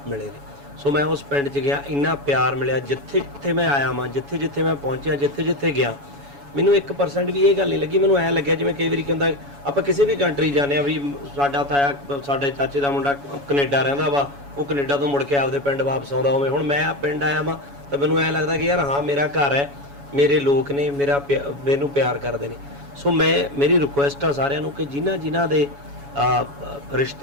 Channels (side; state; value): left; late; 7.1 ms